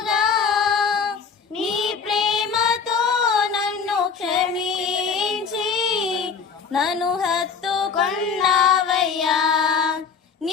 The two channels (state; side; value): quieter; right; 5.8 dB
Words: నీ ప్రేమతో నన్ను క్షమించి నన్ను హత్తుకున్నావయ్యా.